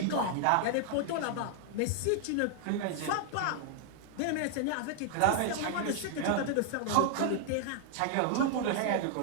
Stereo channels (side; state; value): both; different; correlation 0.00